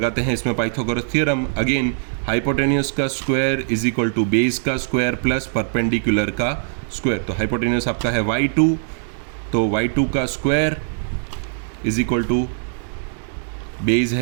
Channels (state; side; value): silent; left; digital silence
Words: हैं इसमें पाइथागोरस थ्योरम। अगेन हाइपोटेन्यूस का square is equal to base का स्क्वायर प्लस परपेंडिकुलर का स्क्वायर। तो हाइपोटेन्यूस आपका है y2, तो y2 का square is equal to base